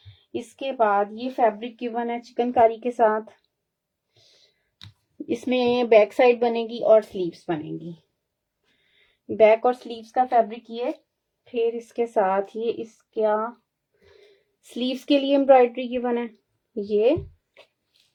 इसके बाद ये फैब्रिक गिवन है चिकनकारी के साथ। इसमें बैक साइड बनेगी और स्लीव्स बनेगी। बैक और स्लीव्स का फैब्रिक ये। फिर इसके साथ ये इसका स्लीव्स के लिए एम्ब्रॉयडरी गिवन है ये।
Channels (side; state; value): both; identical; correlation 1.00